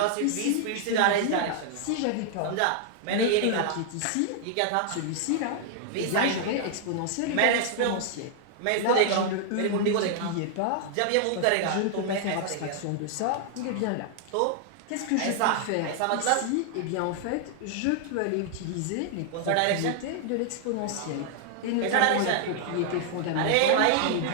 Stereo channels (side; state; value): both; different; correlation 0.00